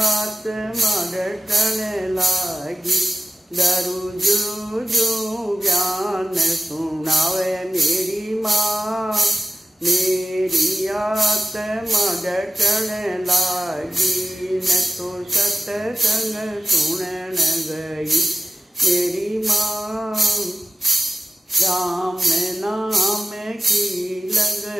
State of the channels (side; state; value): both; normal; correlation 0.93